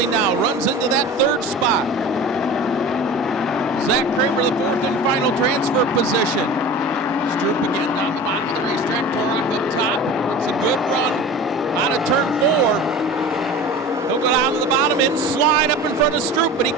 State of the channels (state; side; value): normal; both; correlation 0.36